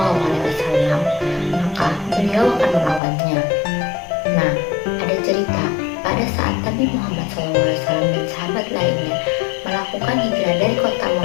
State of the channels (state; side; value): drops out; right; at 3.0 s